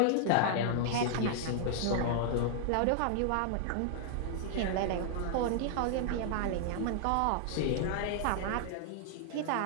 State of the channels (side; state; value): both; different; correlation -0.01